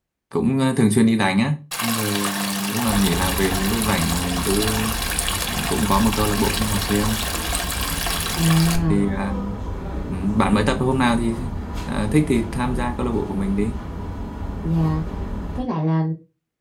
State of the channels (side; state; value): both; identical; correlation 1.00